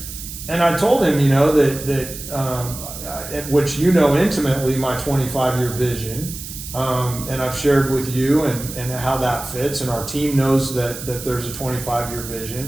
And I told him, which intimately, my 25-year vision, and I've shared with you and how that fits, and our team knows that there's a 25-year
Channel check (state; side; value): noise; right; hiss, 11 dB below the sound